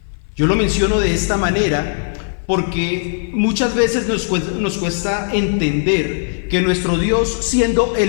Yo lo menciono de esta manera porque muchas veces nos cuesta entender que nuestro Dios, siendo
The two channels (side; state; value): right; silent; 56 dB below the other